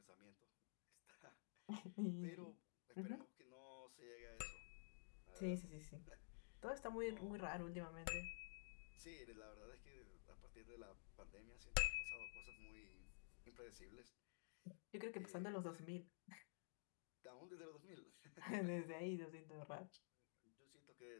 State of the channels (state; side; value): silent; right; digital silence